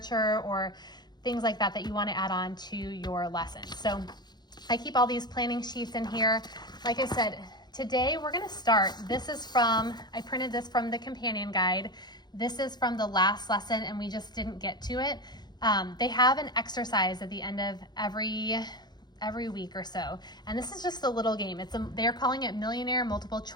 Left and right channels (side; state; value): right; late; 0.21 ms